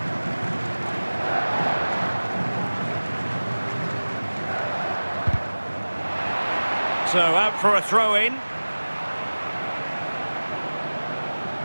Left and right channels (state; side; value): inverted; both; correlation -1.00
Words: So out for a throw-in.